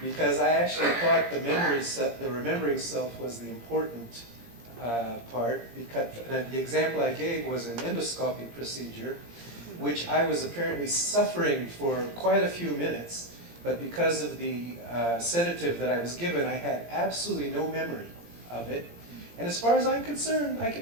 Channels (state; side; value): late; left; 17 ms